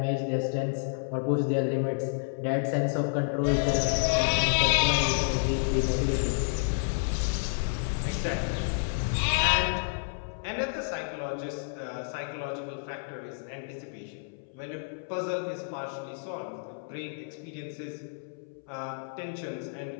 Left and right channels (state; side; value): silent; right; 58 dB below the other